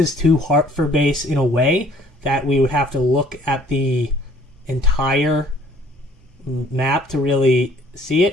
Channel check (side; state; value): both; normal; correlation 0.58